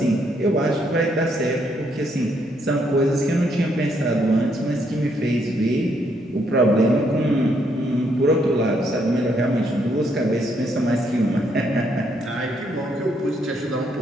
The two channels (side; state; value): both; normal; correlation 0.73